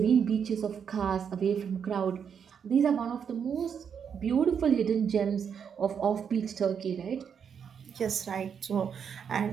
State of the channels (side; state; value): left; quieter; 7.3 dB